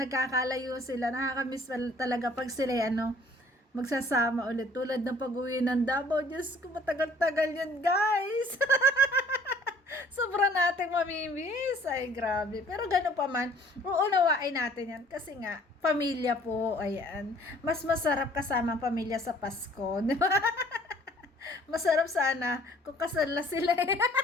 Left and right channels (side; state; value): both; normal; correlation 0.56